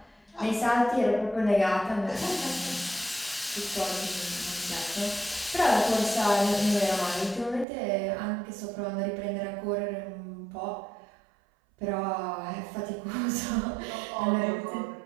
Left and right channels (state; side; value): drops out; left; at 7.7 s